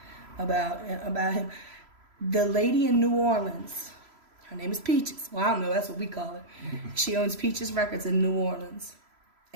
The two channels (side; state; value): left; late; 3.0 ms